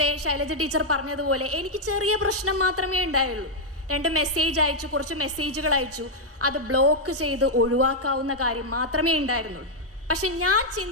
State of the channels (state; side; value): normal; both; correlation -0.02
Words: ശൈലജ ടീച്ചർ പറഞ്ഞതുപോലെ എനിക്ക് ചെറിയ പ്രശ്നം മാത്രമേ ഉണ്ടായുള്ളൂ. 2 മെസ്സേജ് അയച്ചു, കുറച്ച് മെസ്സേജുകൾ അയച്ചു, അത് ബ്ലോക്ക് ചെയ്ത് ഒഴിവാക്കാവുന്ന കാര്യം മാത്രമേ ഉണ്ടായിരുന്നുള്ളൂ. പക്ഷെ ഞാൻ